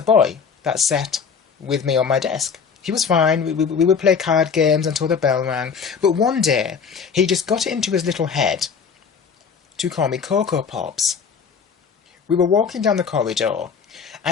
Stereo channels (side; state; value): right; quieter; 6.2 dB